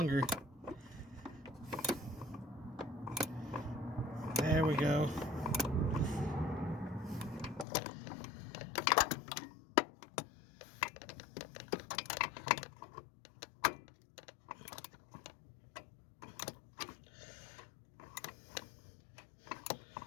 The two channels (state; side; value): drops out; right; at 7.7 s